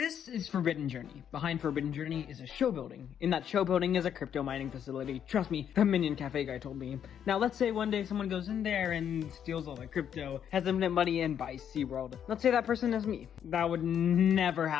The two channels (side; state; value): right; quieter; 9.0 dB